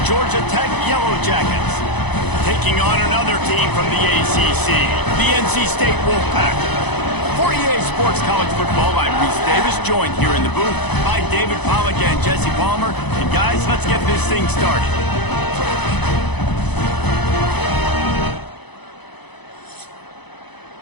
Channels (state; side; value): late; right; 0.99 ms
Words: Georgia Tech Yellow Jackets, taking on another team from the ACC, the NC State Wolfpack. For EA Sports College Football, I'm Reese Davis, joined here in the booth by David Pollack and Jesse Palmer. And guys, let's get this thing started.